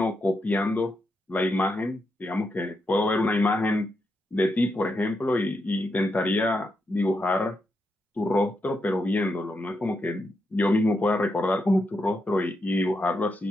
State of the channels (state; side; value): normal; both; correlation 0.84